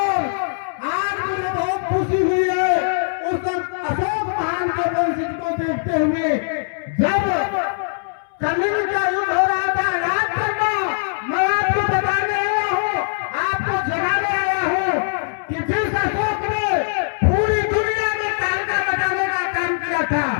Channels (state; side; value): silent; right; 64 dB below the other